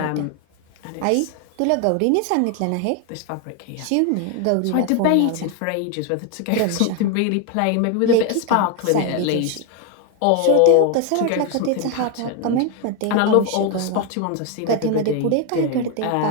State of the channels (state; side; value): different; both; correlation 0.01